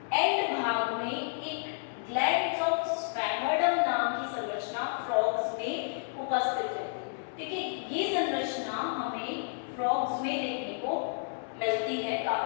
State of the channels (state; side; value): silent; right; digital silence